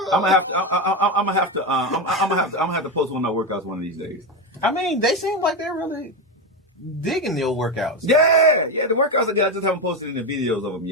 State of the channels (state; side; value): normal; both; correlation 0.12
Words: I'm gonna have to post one of my workouts one of these days. I mean, they seem like they're really digging their workouts. Yeah, the workouts I got, I just haven't posted any videos of them